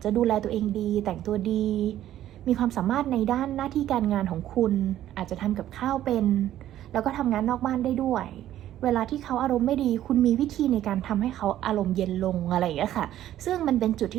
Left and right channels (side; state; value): left; quieter; 12.5 dB